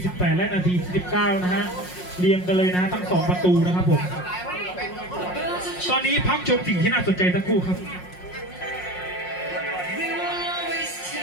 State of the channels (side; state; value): right; late; 5.5 ms